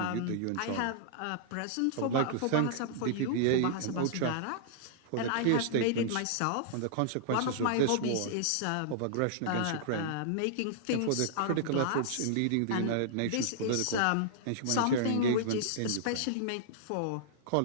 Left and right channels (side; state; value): both; different; correlation -0.02